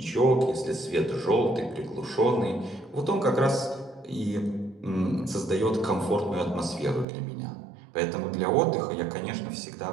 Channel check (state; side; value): drops out; left; at 7.1 s